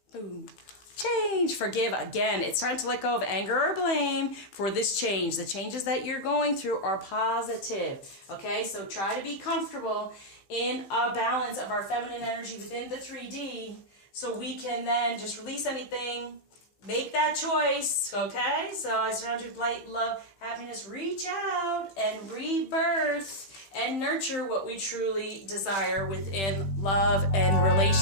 Boom. Change, forgive. Again, it's time to let go of anger or blame for this change. The changes that you're going through are positive. Okay, so try to be comfortable in a balance of our feminine energy within the 3D so we can then just release anything, make that choice. Okay, so I surround you with light, love, happiness. Reach out and rebirth and nurture what we truly desire within love and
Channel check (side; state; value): right; late; 15 ms